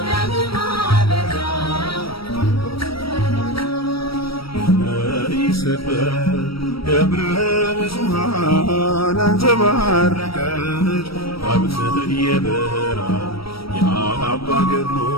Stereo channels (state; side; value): late; right; 0.75 ms